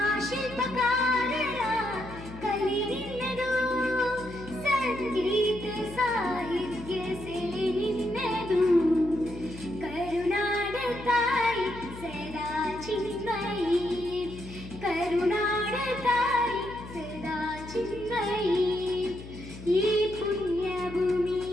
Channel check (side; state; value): left; noise; hum, 14 dB below the sound